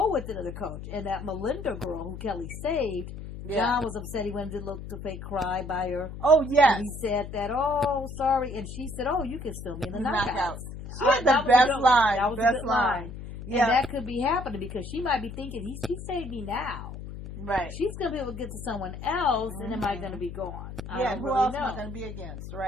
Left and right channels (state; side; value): noise; left; hum, 10 dB below the sound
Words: with another coach. And that Melinda girl who Kelly saved, John was upset he went to look to fake cry by her. Oh, yes. And he said that, oh, sorry. And she said, oh, you can still be in the knockouts. She had the best line. That was the best line. Yeah. And that could be happening because she might be thinking, he saved me now. Right. She's going to be able to get to someone else, and am I going to be gone? Yeah, who else am I going to be against?